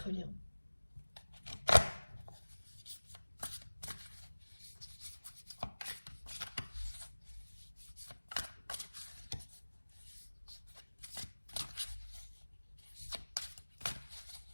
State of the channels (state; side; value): inverted; both; correlation -1.00